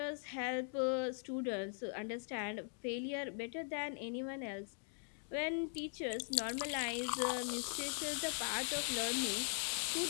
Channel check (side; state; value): right; silent; 50 dB below the other